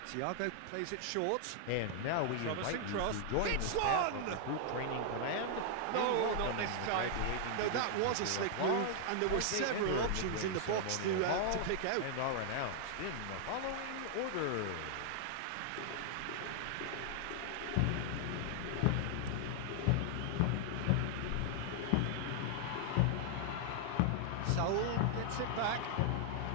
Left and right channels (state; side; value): different; both; correlation 0.00